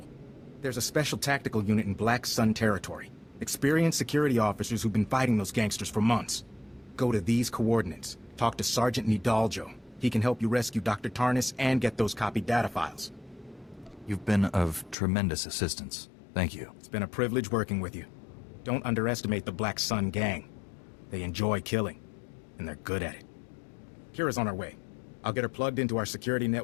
There's a special tactical unit in Black Sun territory. Experienced security officers who've been fighting those gangsters for months. Go to these coordinates. Talk to Sergeant Nidaljo. He can help you rescue Dr. Tarnus and get those copied data files. You've been of tremendous assistance. Thank you. It's been a privilege working with you. Don't underestimate the Black Sun gang. They enjoy killing, and they're good at it. Kira's on her way. I'll get her plugged into our security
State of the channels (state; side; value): drops out; right; at 15.0 s